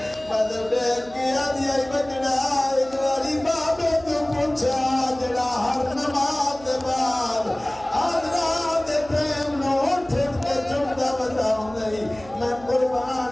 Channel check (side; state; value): right; noise; hum, 20 dB below the sound